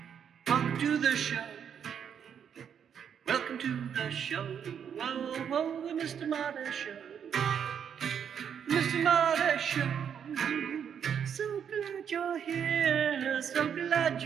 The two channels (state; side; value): quieter; left; 8.0 dB